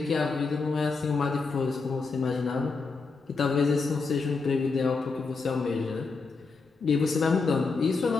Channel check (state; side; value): quieter; right; 4.3 dB